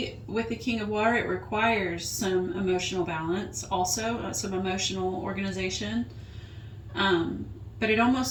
with the King of Water, it requires some emotional balance, also some emotional organization. But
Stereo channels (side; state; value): both; identical; correlation 1.00